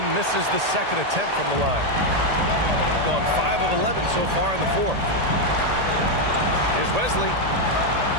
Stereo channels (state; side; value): late; left; 1.8 ms